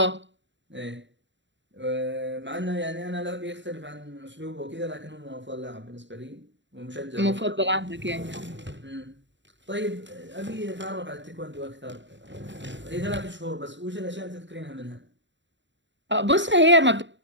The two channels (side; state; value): left; late; 0.53 ms